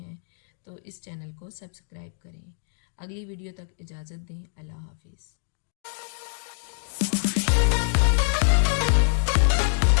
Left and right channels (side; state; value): right; silent; digital silence